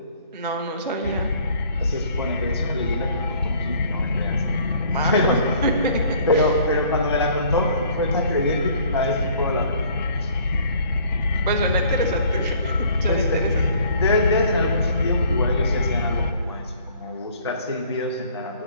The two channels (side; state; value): both; inverted; correlation -0.57